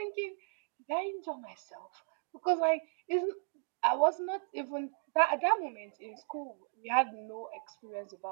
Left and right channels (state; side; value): silent; left; digital silence